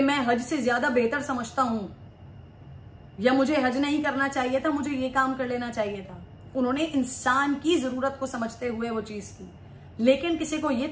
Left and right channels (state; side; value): identical; both; correlation 1.00